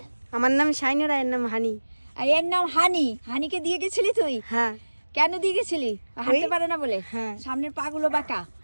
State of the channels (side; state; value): both; inverted; correlation -1.00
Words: আমার নাম শাইনুর, এর নাম হানি। আর এর নাম হানি। হানিকে দিয়ে গেছিলি তুই? হ্যাঁ। কেন দিয়ে গেছিলি? হাঁটতে পারে না বলে? হ্যাঁ। সামনের পা গুলো বাঁকা।